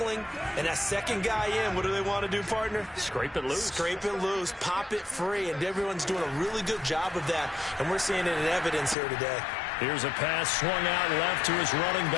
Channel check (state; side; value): drops out; right; at 9.0 s